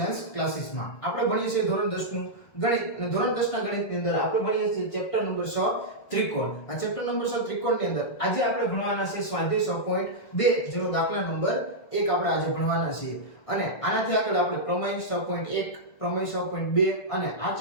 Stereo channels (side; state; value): right; late; 1.6 ms